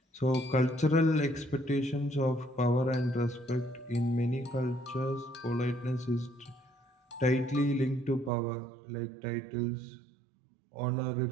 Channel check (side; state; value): left; drops out; at 8.3 s